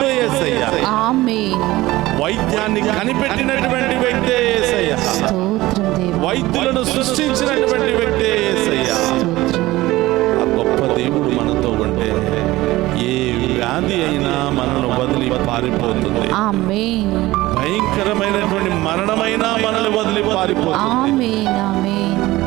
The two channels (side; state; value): left; quieter; 18.1 dB